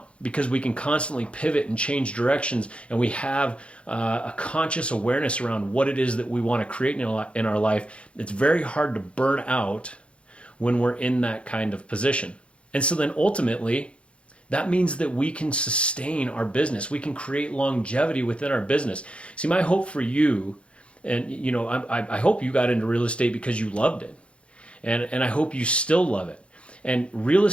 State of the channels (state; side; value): late; right; 0.060 ms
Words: because we can constantly pivot and change directions, and we have a conscious awareness around what it is that we want to create in our life. It's very hard to burn out when we're in that kind of position. And so then ultimately, that means that we can sustain our business. We can create longevity within our business. See, my hope for you, and I hope you got into real estate because you loved it. And I hope you still love it. And real